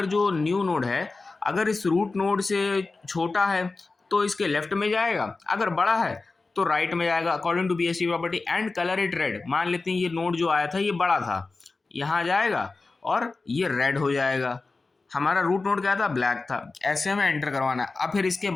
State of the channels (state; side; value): quieter; right; 3.7 dB